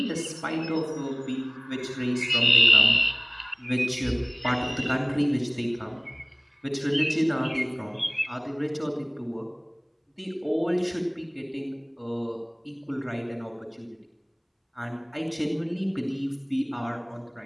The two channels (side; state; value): both; identical; correlation 1.00